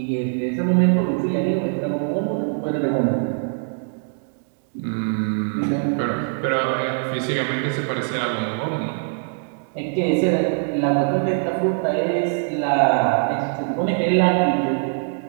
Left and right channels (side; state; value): left; silent; 64 dB below the other